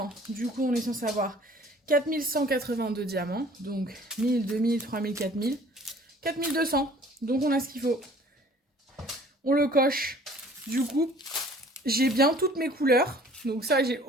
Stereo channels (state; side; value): normal; both; correlation 0.52